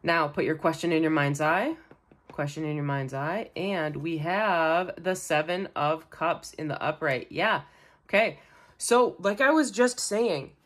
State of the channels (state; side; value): identical; both; correlation 1.00